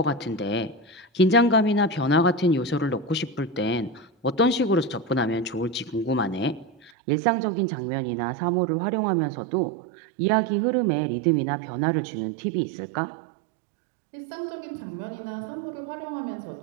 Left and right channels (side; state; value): left; drops out; at 6.9 s